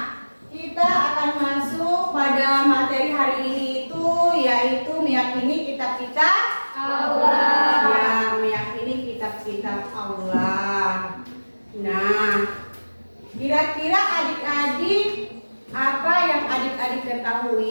kita akan masuk pada materi hari ini itu yaitu meyakini kitab-kitab Allah. Ya, meyakini kitab-kitab Allah. Nah, kira-kira adik-adik apa yang adik-adik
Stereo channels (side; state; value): both; inverted; correlation -1.00